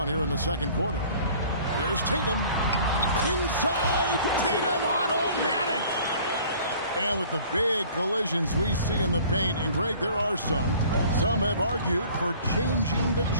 here in the second quarter. Here's Tatum. Inside, Tatum, automatic. And with the big collisions we see in the paint, and Greg, there are some have argued for changing the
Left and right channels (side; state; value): both; inverted; correlation -0.50